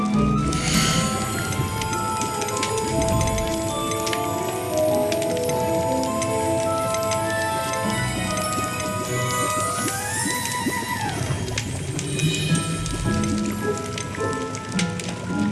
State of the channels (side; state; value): both; identical; correlation 1.00